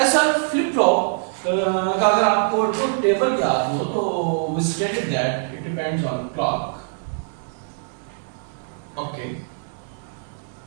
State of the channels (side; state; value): left; silent; digital silence